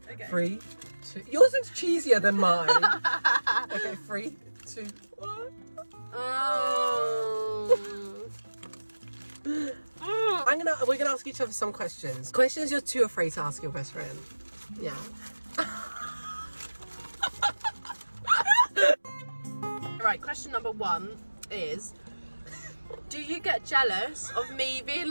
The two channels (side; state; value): both; inverted; correlation -1.00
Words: 3, 2. Yours looks cheesier than mine. Okay, 3, 2, 1. Oh. We're gonna ask each other some questions. Questions you're too afraid to ask your best friend. Yeah. Right, question number 1 is, do you get jealous of me being